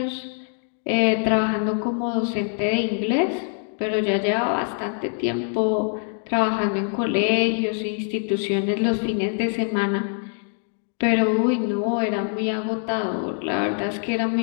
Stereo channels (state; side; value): silent; right; 56 dB below the other